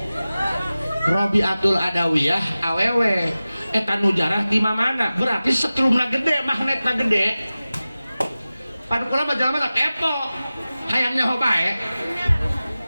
Rabi'atul Adawiyah awewe. Eta nu jarah di mana? Berarti setrumna gede, magnetna gede. Padu kula mah jalma teh kepo. Hayangnya hobae.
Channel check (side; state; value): both; inverted; correlation -0.96